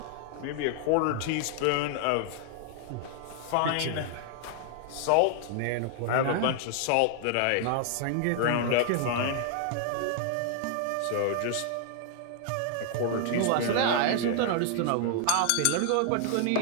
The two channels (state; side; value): different; both; correlation 0.00